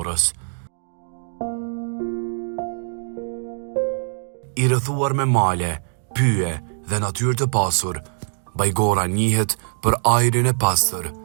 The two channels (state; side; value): silent; left; digital silence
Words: I rrethuar me male, pyje dhe natyrë të pasur, Bajgora njihet për ajrin e pastër,